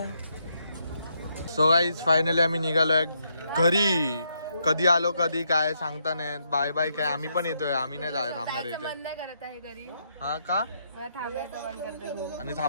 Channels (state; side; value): inverted; both; correlation -0.77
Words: सो गाईज फायनली आम्ही निघालोय घरी. कधी आलो कधी काय सांगता नाही. बाय बाय काय आम्ही पण येतोय. आम्ही नाही थांबणार इथे. मन नाही करत आहे घरी. हा का मला थांबायचं मन करते खूप. आणि